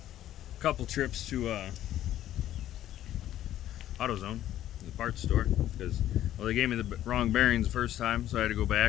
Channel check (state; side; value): quieter; right; 12.5 dB